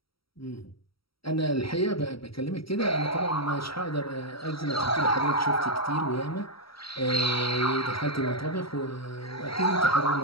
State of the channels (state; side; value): late; right; 0.75 ms